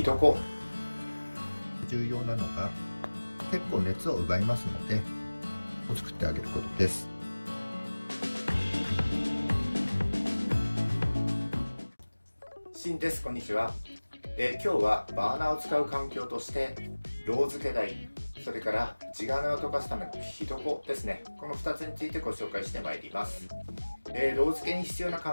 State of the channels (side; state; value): both; inverted; correlation -1.00